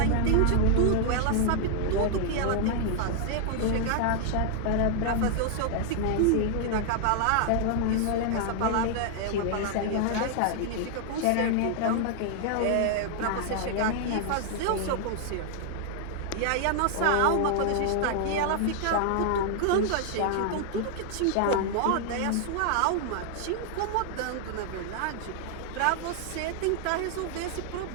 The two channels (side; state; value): both; different; correlation 0.00